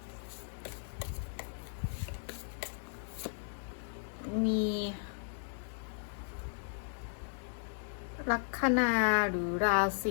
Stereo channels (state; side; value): silent; right; digital silence